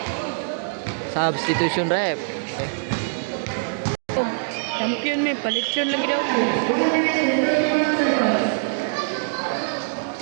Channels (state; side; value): silent; left; digital silence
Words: Substitution rep. Champion may palit yun lagi daw.